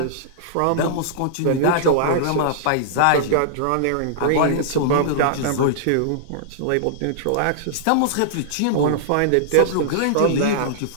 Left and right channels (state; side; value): different; both; correlation -0.01